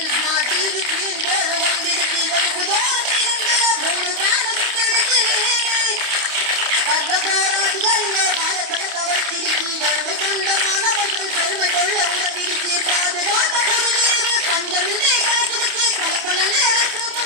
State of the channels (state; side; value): late; left; 28 ms